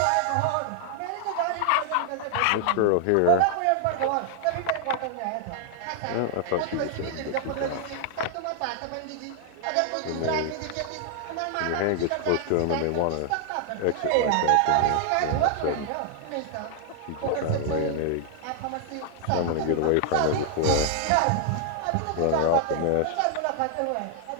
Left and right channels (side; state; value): both; different; correlation 0.00